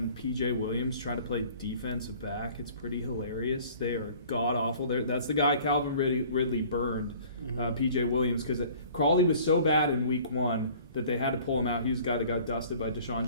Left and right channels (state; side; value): inverted; both; correlation -0.50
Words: PJ Williams try to play defensive back, it's pretty hilarious. They are god awful. That's the guy Calvin Ridley burned, PJ Williams, because Crawley was so bad in week 1 that they had to pull him out. He was the guy that got dusted by Deshaun